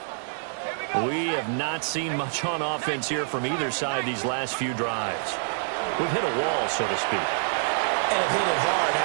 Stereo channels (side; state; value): left; silent; 61 dB below the other